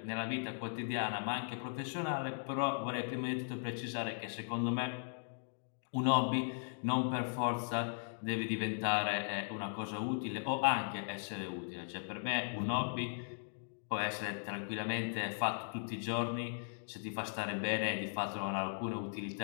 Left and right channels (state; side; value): silent; right; digital silence